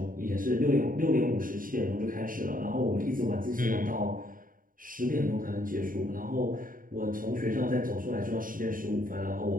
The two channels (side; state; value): left; late; 0.40 ms